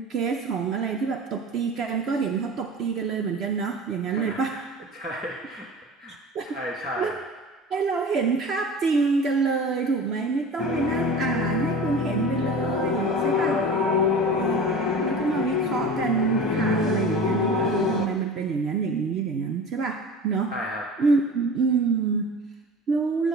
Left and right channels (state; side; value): normal; both; correlation 0.36